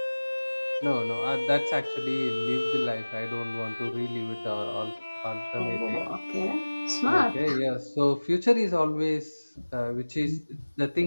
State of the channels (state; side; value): inverted; both; correlation -1.00